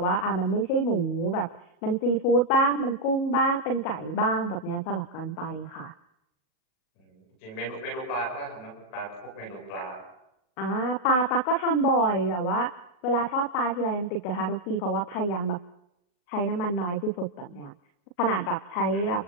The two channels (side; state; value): right; late; 40 ms